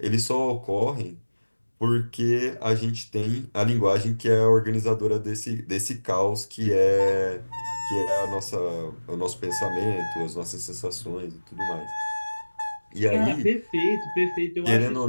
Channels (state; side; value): inverted; both; correlation -1.00